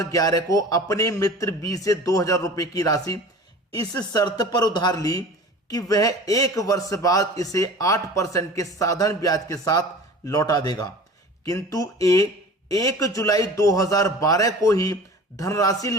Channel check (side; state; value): both; normal; correlation 0.40